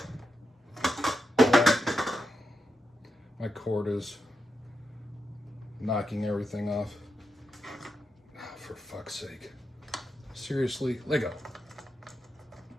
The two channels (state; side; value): normal; both; correlation 0.86